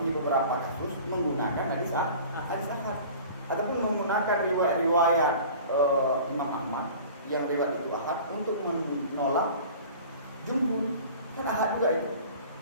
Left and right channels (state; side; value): inverted; both; correlation -0.43